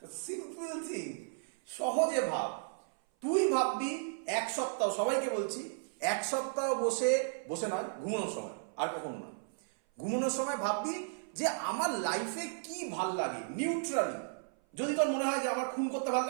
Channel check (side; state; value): left; silent; 55 dB below the other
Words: সিম্পল থিং, সহজে ভাব। তুই ভাববি 1 সপ্তাহ, সবাইকে বলছি 1 সপ্তাহ বসে বসে নয়, ঘুমানোর সময়, আর কখনো না, ঘুমানোর সময় ভাববি যে আমার লাইফে কি ভাল লাগে নিউট্রালি। যদি তোর মনে হয় যে আমার খুন করতে ভাল